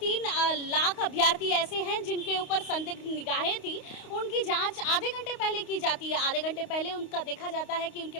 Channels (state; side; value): late; right; 28 ms